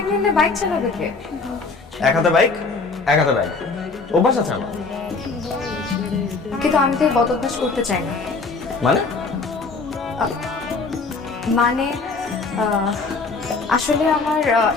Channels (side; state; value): right; quieter; 4.2 dB